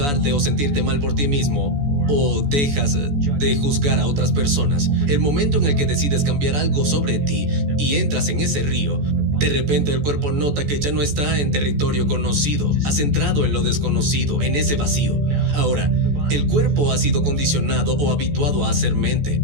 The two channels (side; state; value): left; late; 14 ms